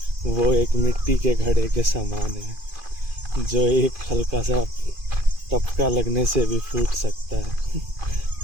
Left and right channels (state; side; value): late; left; 2.5 ms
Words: वो एक मिट्टी के घड़े के समान है, जो एक हल्का सा टपका लगने से भी फूट सकता है